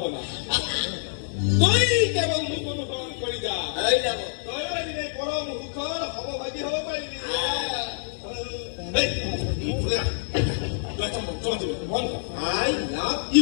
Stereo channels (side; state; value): right; silent; digital silence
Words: তই কেৱল মোক অনুসৰণ কৰি যা তই এদিনে পৰম সুখৰ সমভাগী হ'ব পাৰিবি I love